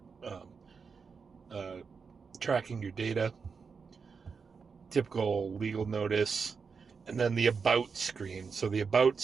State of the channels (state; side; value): quieter; left; 5.4 dB